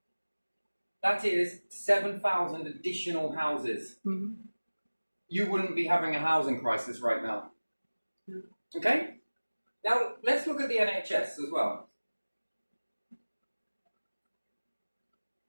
That is 7,000 additional houses. Mm-hmm. You wouldn't be having a housing crisis right now. No. Okay? Now, let's look at the NHS as well.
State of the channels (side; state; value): both; inverted; correlation -1.00